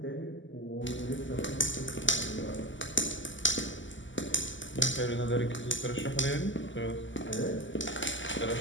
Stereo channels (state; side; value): late; right; 0.55 ms